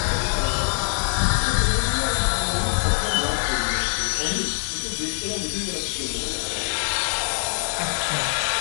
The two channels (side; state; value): right; silent; digital silence